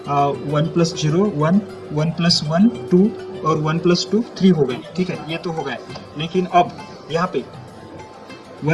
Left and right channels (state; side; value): identical; both; correlation 1.00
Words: 1 प्लस 0 1, 1 प्लस 1 2 और 1 प्लस 2 3 हो गए, ठीक है, ये तो हो गए। लेकिन अब यहाँ पे